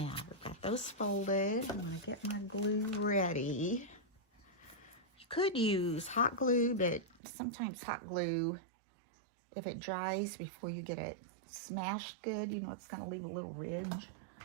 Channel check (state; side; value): drops out; left; at 7.2 s